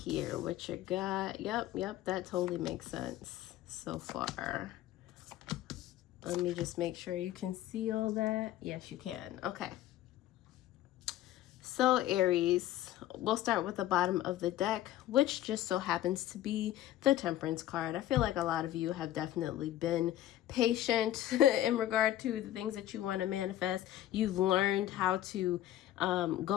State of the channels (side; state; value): right; quieter; 13.4 dB